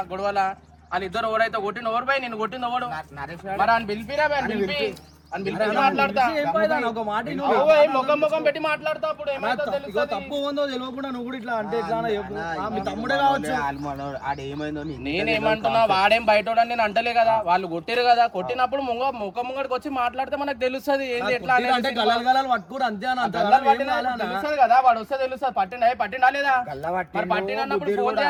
గొడవల. వాళ్ళిద్దరు ఎవరైతే కొట్టిన ఎవరు పోయి నేను కొట్టింది ఎవడు? మరి ఆయన పిలిపిరా పిలిపి మాట్లాడతా. ముఖం ముఖం పెట్టి మాట్లాడతా. అప్పుడు తప్పు ఉందో తెలియకుండా నువ్వు కూడా ఇట్లా అంటే మీ తమ్ముడే కావచ్చు. నేనేమంటున్నా, వాడేం బయటోడని నేను అంటలే కదా. వాళ్ళు కొట్టిరు కదా, కొట్టినప్పుడు ముఖం ముంగడికి వచ్చి మాట్లాడితే మనకు తెలుస్తుంది ఏంది ఎట్లా అంటే పట్టుకోడు అంతే తెలుస్తుంది కదా. వాడు వస్తే తెలుస్తుంది. పట్టిండా లేదా? పట్టినప్పుడు ఫోన్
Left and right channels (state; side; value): identical; both; correlation 1.00